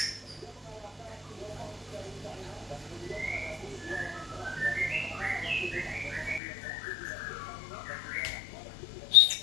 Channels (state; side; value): drops out; right; at 6.4 s